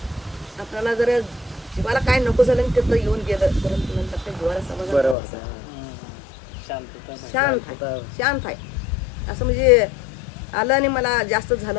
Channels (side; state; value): right; drops out; at 5.2 s